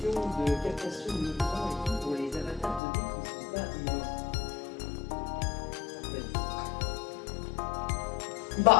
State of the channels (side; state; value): right; drops out; at 2.8 s